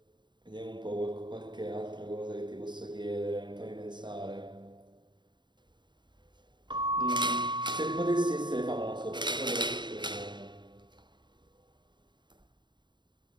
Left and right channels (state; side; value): late; left; 0.22 ms